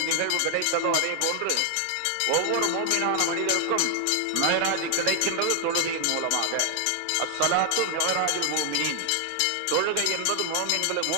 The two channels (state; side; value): different; both; correlation 0.00